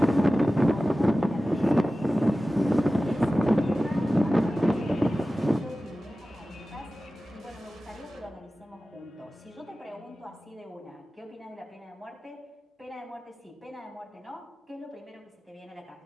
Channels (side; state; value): both; normal; correlation 0.96